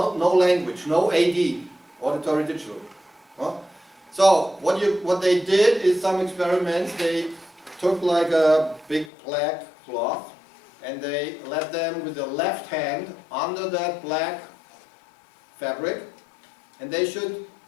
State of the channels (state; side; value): drops out; right; at 9.1 s